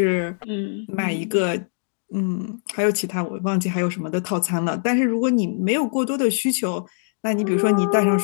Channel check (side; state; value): right; silent; digital silence